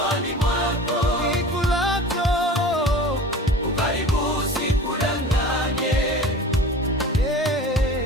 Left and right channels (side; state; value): both; normal; correlation 0.39